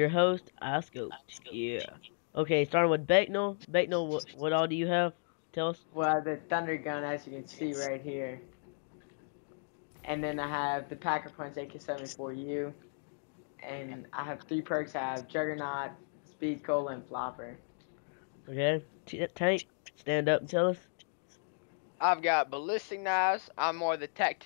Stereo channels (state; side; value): silent; right; digital silence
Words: host, iSCoP. Yeah. Okay, starting with Becknell. Becknell, what all do you have? Tell us. Well, the Thunder Gun, as you can see right here. And then I have the Packer Punch AK-74U. And I have 3 perks. I have Juggernaut, Speed Cola, and Flopper. Okay. Tank, stand up and tell us. I've got ballistic knives. I'm more the